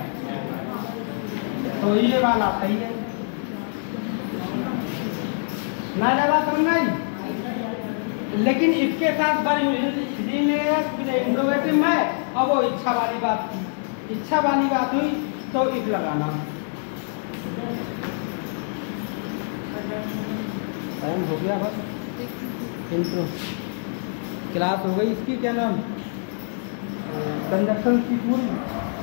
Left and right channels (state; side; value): silent; right; digital silence